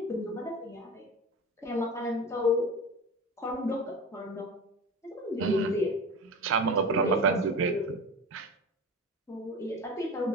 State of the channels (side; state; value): both; normal; correlation 0.30